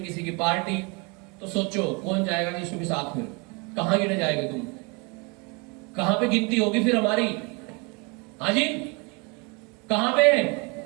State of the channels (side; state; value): left; quieter; 30.1 dB